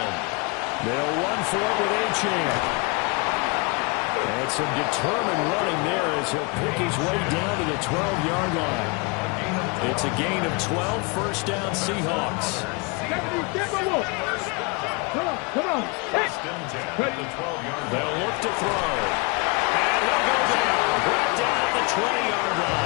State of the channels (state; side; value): quieter; right; 30.2 dB